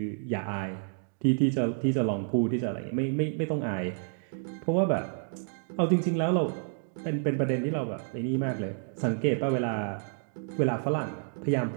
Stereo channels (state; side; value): silent; left; digital silence